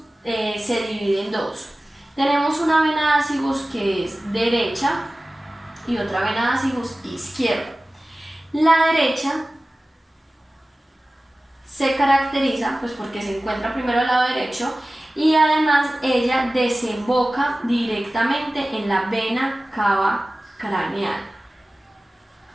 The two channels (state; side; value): normal; both; correlation 0.97